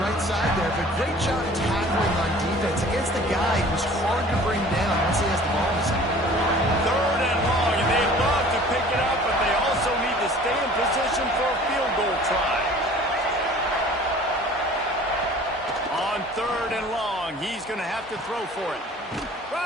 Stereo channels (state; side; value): normal; both; correlation 0.48